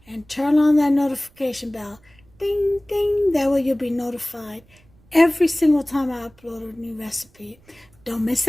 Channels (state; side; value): noise; right; rumble, 30 dB below the sound